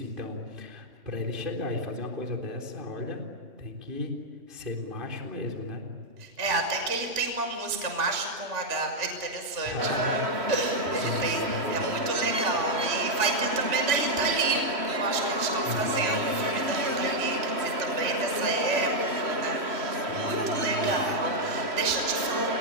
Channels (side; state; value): left; late; 3.1 ms